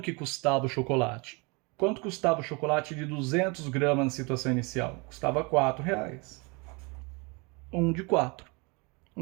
custava o chocolate. Quanto custava o chocolate de 200 gramas na situação inicial? Custava R$4. 1 de 4.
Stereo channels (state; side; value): quieter; left; 29.1 dB